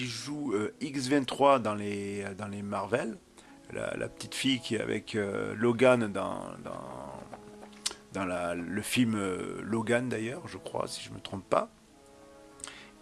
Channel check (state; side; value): identical; both; correlation 1.00